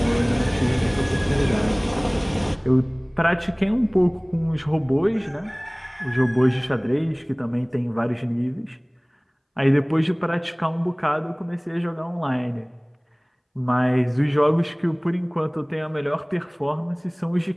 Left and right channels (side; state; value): both; identical; correlation 1.00